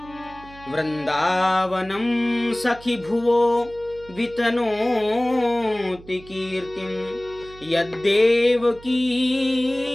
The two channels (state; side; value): noise; right; hum, 20 dB below the sound